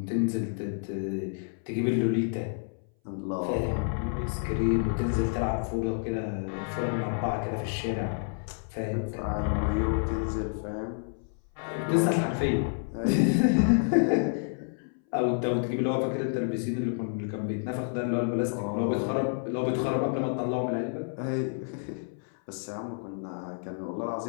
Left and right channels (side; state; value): right; silent; 58 dB below the other